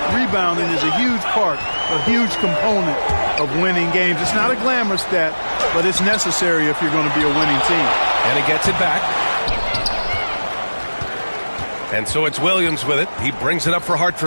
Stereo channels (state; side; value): inverted; both; correlation -1.00